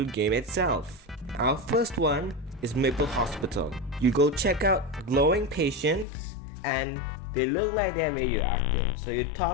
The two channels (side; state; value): right; drops out; at 6.1 s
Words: game itself. Our first one is Maple Hospital. You go check out glowing patients and they look like they're radioactive. So you